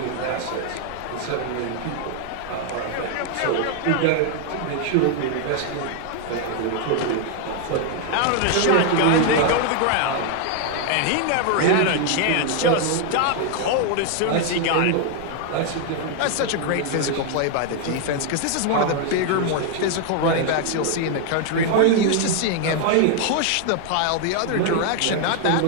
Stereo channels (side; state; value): both; different; correlation 0.00